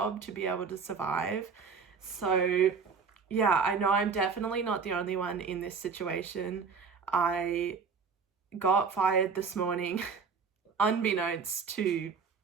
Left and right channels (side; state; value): left; quieter; 5.5 dB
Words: to be able to survive. So yeah, I know I'm definitely not the only one in this situation. I got fired this morning, unbeknownst to